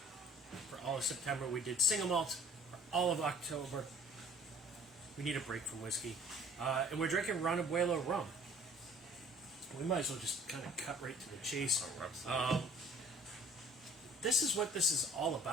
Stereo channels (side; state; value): both; normal; correlation 0.52